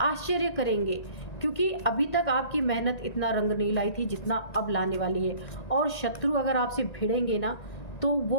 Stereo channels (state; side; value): late; right; 1.9 ms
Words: आश्चर्य करेंगे, क्योंकि अभी तक आपकी मेहनत इतना रंग नहीं लाई थी जितना अब लाने वाली है। और शत्रु अगर आपसे भिड़ेंगे ना, तो